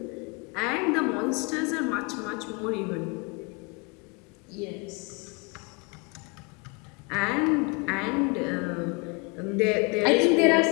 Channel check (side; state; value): right; quieter; 30.7 dB